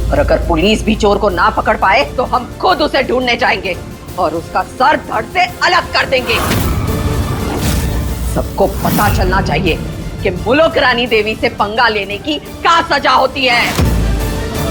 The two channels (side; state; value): both; identical; correlation 1.00